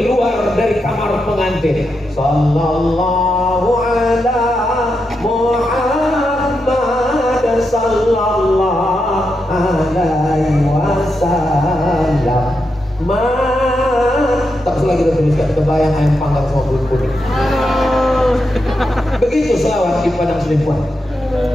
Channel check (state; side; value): normal; both; correlation 0.85